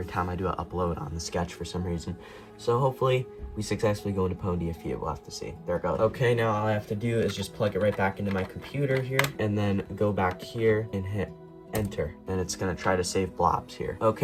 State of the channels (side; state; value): both; identical; correlation 1.00